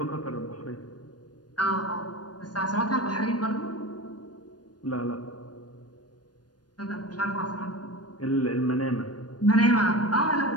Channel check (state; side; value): late; right; 0.69 ms